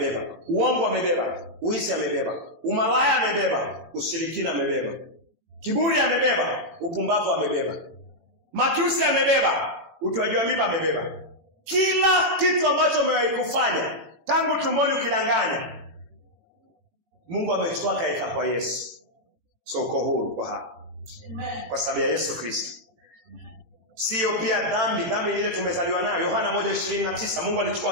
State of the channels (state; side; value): late; left; 18 ms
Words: Uongo amebeba. Uizi amebeba. Umalaya amebeba. Ushirikina amebeba. Kiburi amebeba. Upumbavu amebeba. Matusi amebeba. Utoaji wa mimba amebeba. Kila kitu ambacho umewahi kufanya tangu tumboni ukidanganya, Mungu amechukua kaeka kwa Yesu. So uko huru kwa hapa. Amen. Kwa sababu ya Yesu Kristo. Sio pia dhambi ile tumezaliwa nayo. Yohana 1:29, Mungu